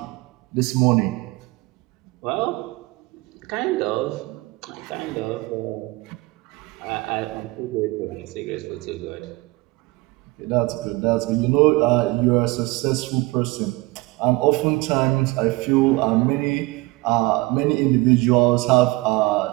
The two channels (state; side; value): quieter; left; 22.4 dB